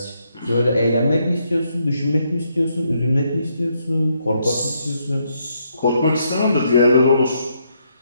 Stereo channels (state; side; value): inverted; both; correlation -0.76